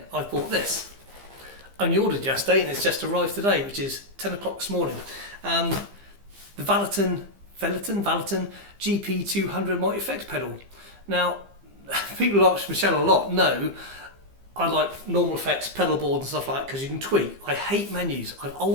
I bought this. Only ordered yesterday and it's just arrived today, which is 10 o'clock this morning. The Valeton GP200 multi-effects pedal. Now, people ask Michelle a lot. No, I like normal effects, pedal board and stuff like that because you can tweak. I hate menus. I've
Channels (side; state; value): left; late; 15 ms